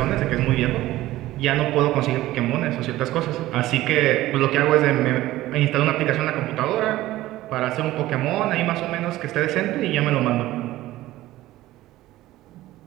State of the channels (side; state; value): left; quieter; 16.1 dB